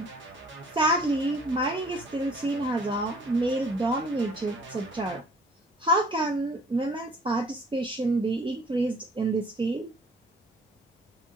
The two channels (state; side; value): normal; both; correlation 0.54